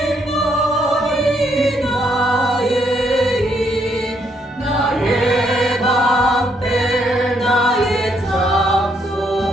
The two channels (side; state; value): both; normal; correlation 0.73